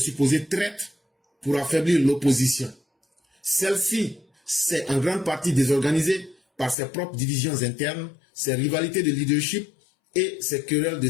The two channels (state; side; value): drops out; right; at 6.8 s